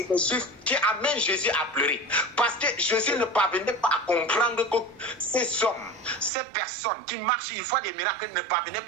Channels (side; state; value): left; drops out; at 6.3 s